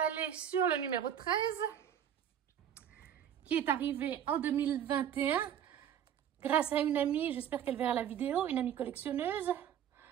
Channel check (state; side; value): quieter; left; 9.6 dB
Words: sur le numéro 13, qui est arrivé en 2021, grâce à une amie, j'espère qu'elle verra la vidéo, une amie collectionneuse.